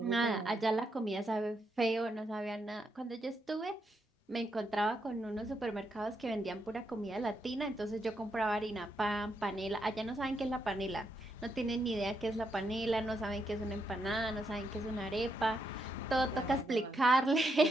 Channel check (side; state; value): both; normal; correlation 0.80